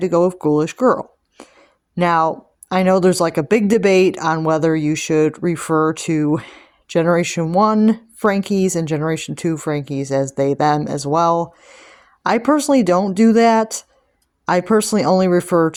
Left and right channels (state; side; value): identical; both; correlation 1.00